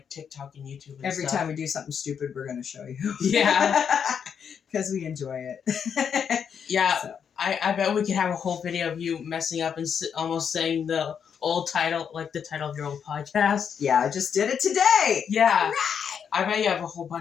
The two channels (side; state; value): right; quieter; 7.4 dB